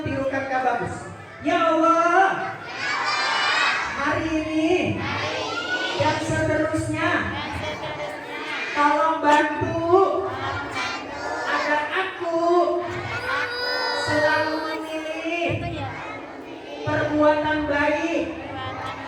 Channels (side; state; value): both; identical; correlation 1.00